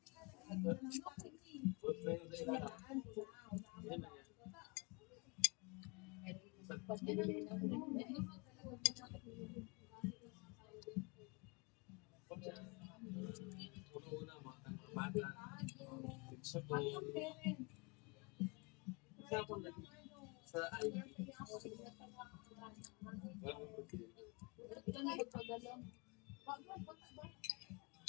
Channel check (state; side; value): quieter; right; 30.0 dB